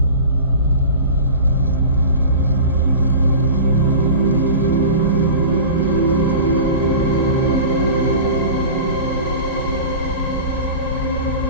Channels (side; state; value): both; inverted; correlation -0.35